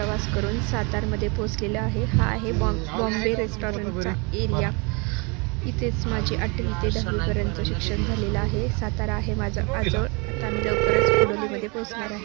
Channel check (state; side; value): quieter; left; 30.9 dB